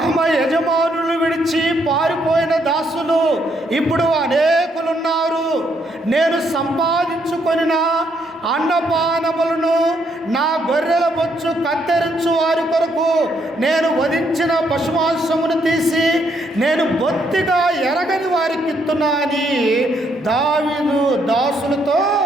యజమానులు విడిచి పారిపోయిన దాసులు ఇప్పుడు అనేకులున్నారు. నేను సంపాదించుకొనిన అన్నపానములను, నా గొర్రెల బొచ్చు కత్తిరించు వారి కొరకు నేను వధించిన పశుమాంసమును తీసి నేను బొత్తిగా ఎరగని వారికి ఇస్తున్నా అని దావీదు దాసులతో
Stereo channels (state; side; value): normal; both; correlation 0.73